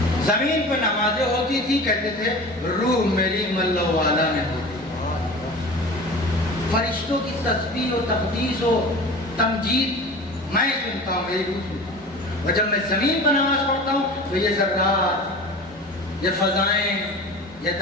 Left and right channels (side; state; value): both; normal; correlation 0.36